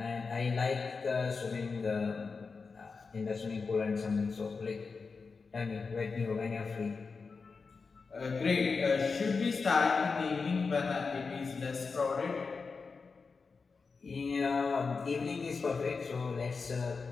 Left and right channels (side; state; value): right; quieter; 4.7 dB